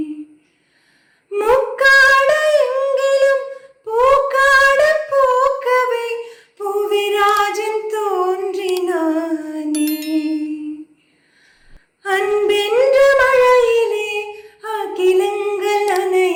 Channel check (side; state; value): both; identical; correlation 1.00